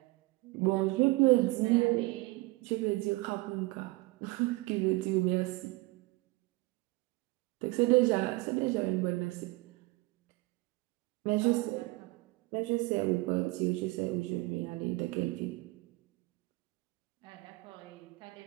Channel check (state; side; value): quieter; left; 22.6 dB